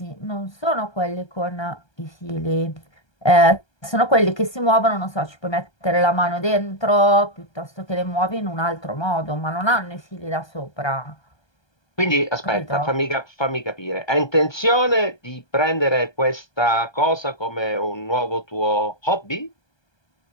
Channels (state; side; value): late; right; 1.3 ms